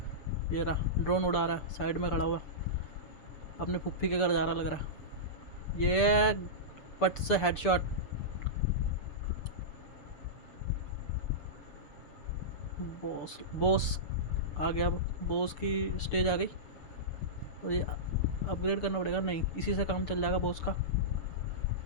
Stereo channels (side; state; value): right; late; 6.8 ms